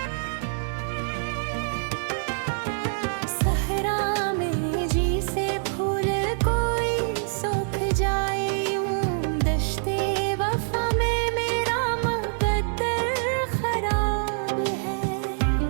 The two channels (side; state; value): left; silent; digital silence